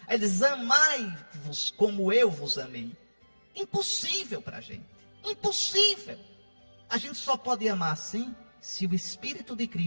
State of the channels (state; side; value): inverted; both; correlation -1.00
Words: Ele diz, amai-vos como eu vos amei. Impossível para a gente. Impossível. A gente só pode amar assim se o Espírito de